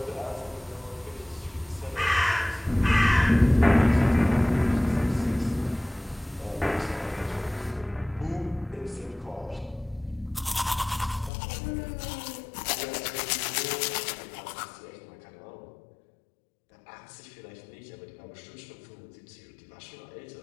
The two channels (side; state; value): right; drops out; at 11.3 s